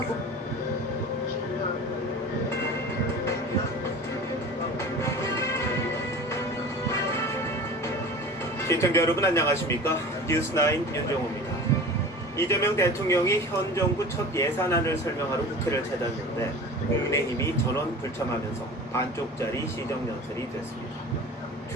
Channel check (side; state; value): both; normal; correlation 0.37